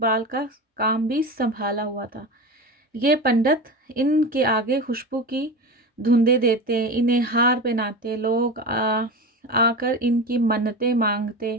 کا کام بھی سنبھالا ہوا تھا۔ یہ پنڈت ان کے آگے خوشبو کی دھندیں دیتے، انہیں ہار پہناتے، لوگ آ کر ان کی منتیں مانگتے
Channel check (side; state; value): both; normal; correlation 0.26